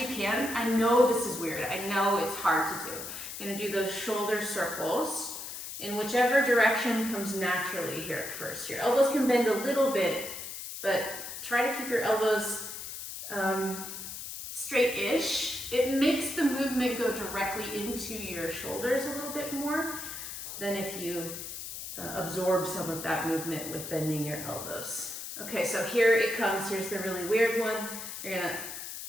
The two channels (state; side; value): noise; left; hiss, 8 dB below the sound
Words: can, I know this is weird, I know it's hard to do. You're gonna do those shoulder circles in whichever direction comes naturally here at first. Your elbows can bend a little bit, but try to keep your elbows straight-ish. It makes the movement go directly into your shoulders a little bit more than if you absorb some of that movement with bending your elbows. Okay, so here it comes. Here's the really weird one. You're gonna